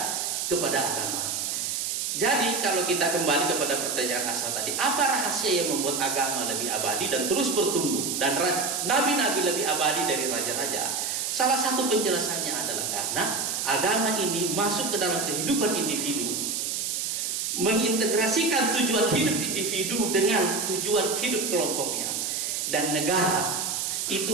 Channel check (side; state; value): right; noise; hiss, 1 dB below the sound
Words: agama. Jadi kalau kita kembali kepada pertanyaan asal tadi, apa rahasia yang membuat agama lebih abadi dan terus bertumbuh, dan nabi-nabi lebih abadi dari raja-raja? Salah satu penjelasannya adalah karena agama ini masuk ke dalam kehidupan individu, mengintegrasikan tujuan hidup individu dengan tujuan hidup kelompoknya. Dan negara